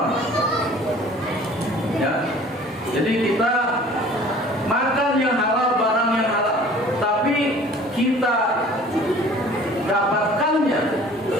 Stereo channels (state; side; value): normal; both; correlation 0.49